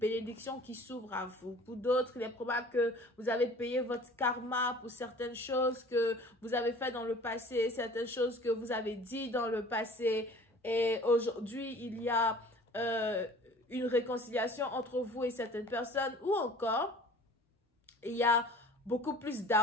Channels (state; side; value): normal; both; correlation 0.47